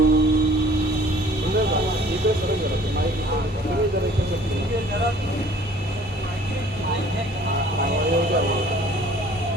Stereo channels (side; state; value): both; normal; correlation 0.53